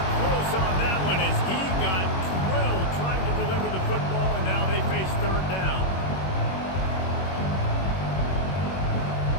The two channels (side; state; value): right; late; 21 ms